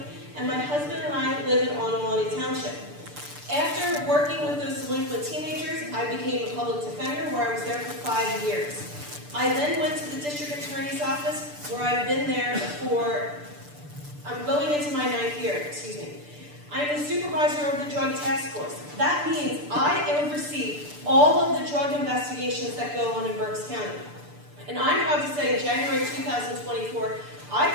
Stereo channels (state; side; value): late; left; 6.8 ms